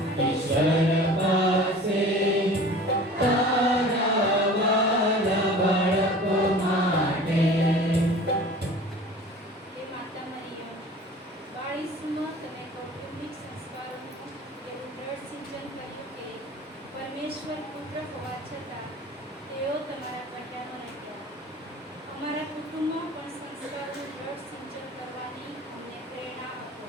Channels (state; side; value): normal; both; correlation 0.42